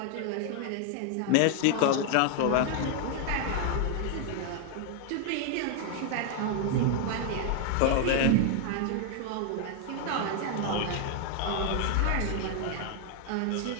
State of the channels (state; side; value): different; both; correlation 0.00